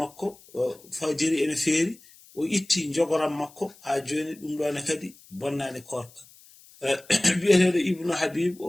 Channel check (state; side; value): noise; left; hiss, 24 dB below the sound